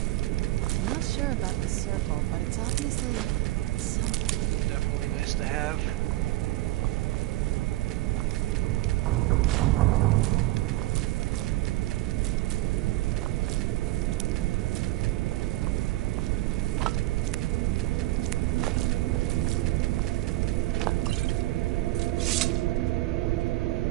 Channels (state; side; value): quieter; left; 17.5 dB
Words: I'm not sure about this circle, but it's obviously something. Definitely nice to have.